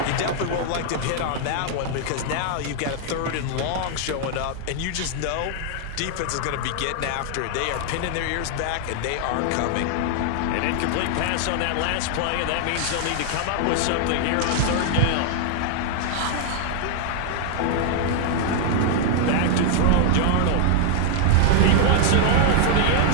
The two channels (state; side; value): different; both; correlation 0.00